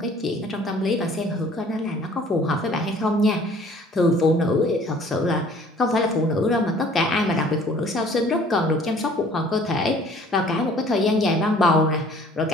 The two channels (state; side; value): normal; both; correlation 0.54